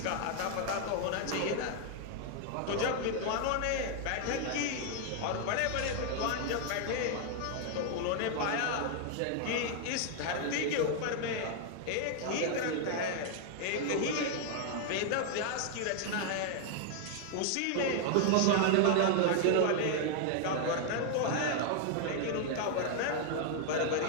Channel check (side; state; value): both; different; correlation 0.00